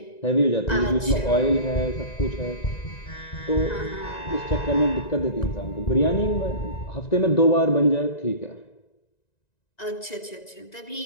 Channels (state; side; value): late; right; 1.9 ms